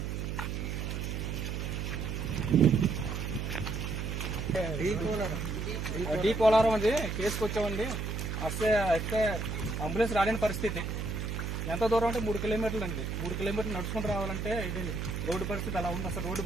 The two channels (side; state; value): right; noise; hum, 3 dB below the sound